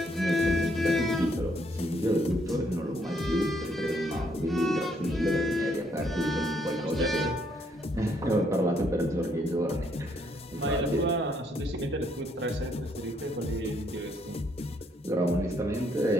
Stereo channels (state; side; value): normal; both; correlation 0.70